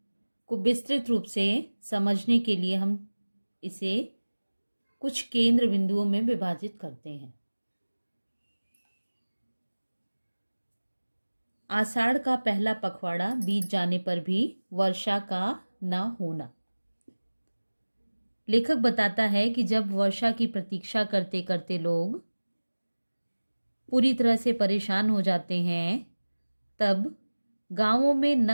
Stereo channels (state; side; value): inverted; both; correlation -1.00